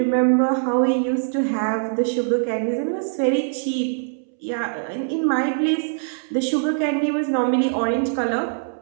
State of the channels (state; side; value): silent; left; 64 dB below the other